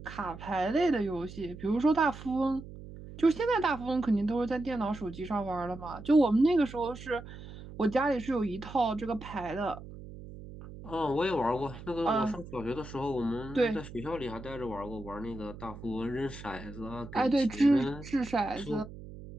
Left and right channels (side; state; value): right; noise; hum, 14 dB below the sound